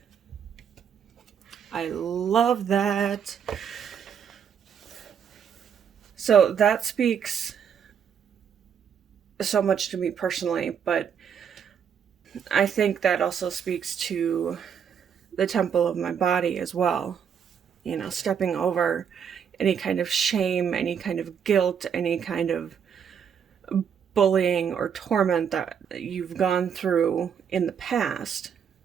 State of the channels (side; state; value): left; quieter; 7.7 dB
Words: I love that. So that speaks so much to me personally, but I think that also speaks to the temple of my body as well. You know, stepping over any kind of shame, any kind of guilt, any kind of bullying or torment that you've gone through in the past.